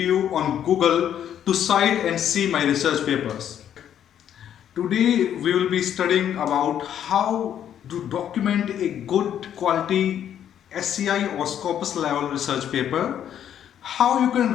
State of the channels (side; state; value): right; quieter; 9.8 dB